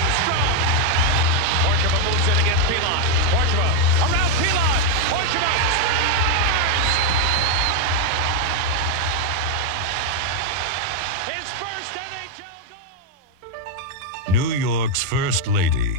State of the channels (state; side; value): late; left; 19 ms